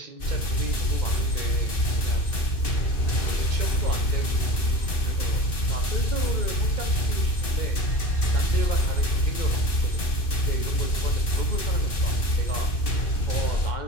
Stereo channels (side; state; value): right; late; 2.6 ms